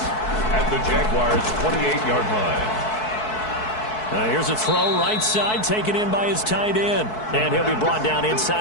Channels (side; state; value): right; late; 4.6 ms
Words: the Jaguars' 28-yard line. Here's a throw right side taken in by his tight end. And he'll be brought down